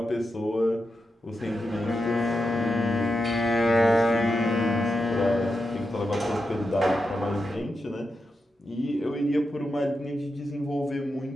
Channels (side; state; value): both; normal; correlation 0.88